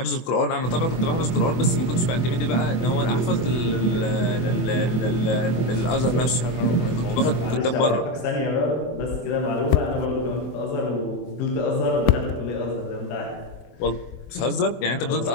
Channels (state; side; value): late; right; 24 ms